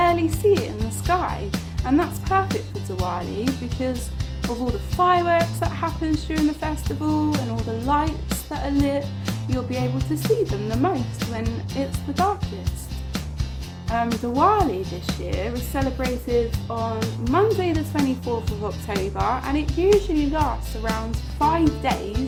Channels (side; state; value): both; identical; correlation 1.00